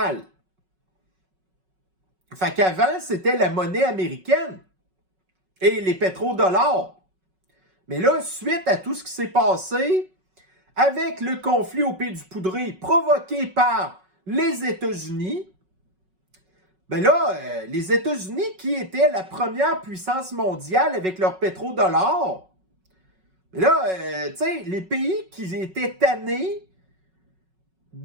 Fait qu'avant, c'était la monnaie américaine et les pétrodollars. Mais là, suite à tout ce qui s'est passé, avec le conflit au Pays du Poudré provoqué par les États-Unis, ben là, les États-Unis, qui étaient la première puissance mondiale avec leur pétrodollar, là, tu sais, les pays qui étaient tannés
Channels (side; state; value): left; late; 5.4 ms